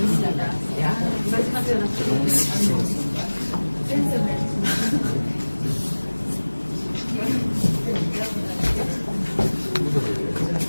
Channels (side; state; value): both; inverted; correlation -1.00